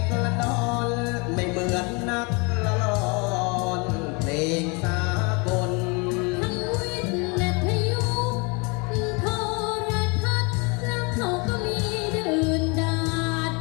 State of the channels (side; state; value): right; quieter; 30.5 dB